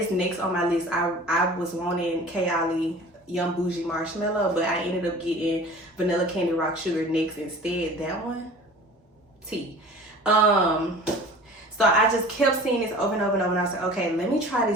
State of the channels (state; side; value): normal; both; correlation 0.42